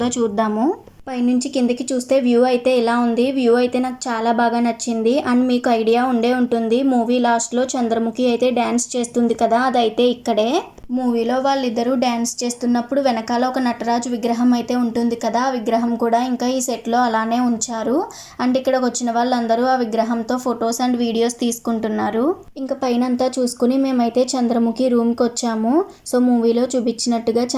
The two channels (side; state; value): both; identical; correlation 1.00